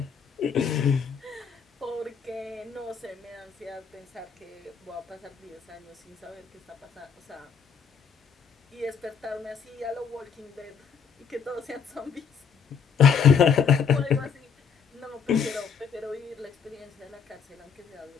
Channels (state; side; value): quieter; right; 6.6 dB